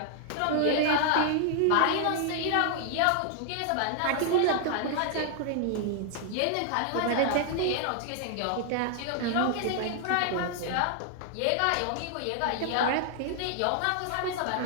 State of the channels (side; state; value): both; different; correlation 0.00